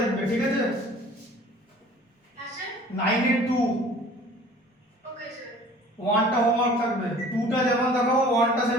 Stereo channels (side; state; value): both; normal; correlation 0.49